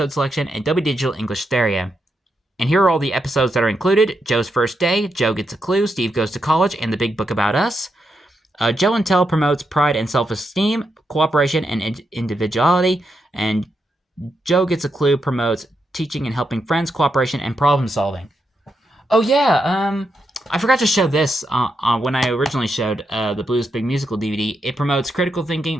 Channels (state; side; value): normal; both; correlation 0.83